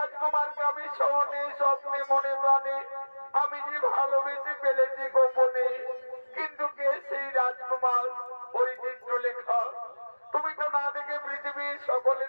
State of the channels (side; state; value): both; inverted; correlation -1.00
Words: আমি স্বপ্নে স্বপ্নে মনে প্রাণে আমি যে ভালোবেসে ফেলেছি গোপনে। কিন্তু কে সেই রাজকুমার? ওই চিত্রলেখা। তুমি তো না দেখে পৃথিবীর